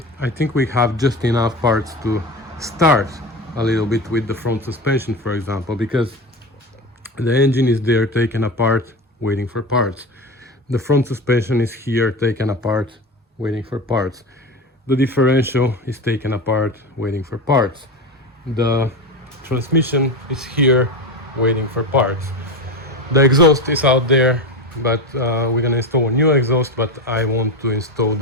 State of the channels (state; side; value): normal; both; correlation 0.23